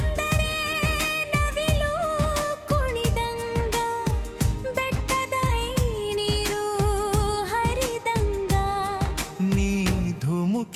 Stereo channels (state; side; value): identical; both; correlation 1.00